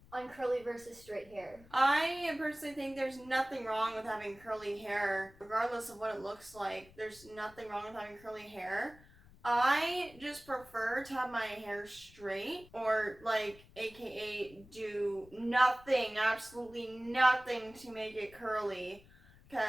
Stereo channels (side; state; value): left; noise; rumble, 24 dB below the sound